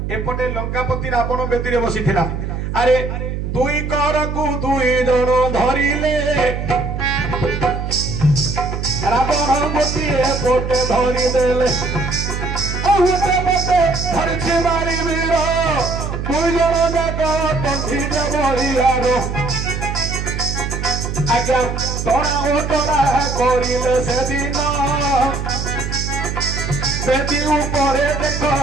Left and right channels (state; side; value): noise; right; hum, 4 dB below the sound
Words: एपटे लंकापति रावण बेदी रे बसिथिला अरे दुई कर को दुई जण धरिले रावण गोटी एपटे धरि देले ओहते पटे धरछि बारी वीर दुई जण जाक तंथि दे बलियारो आज्ञा तोरा ओटरा करिले से दिन बेदी ऊपरे देखो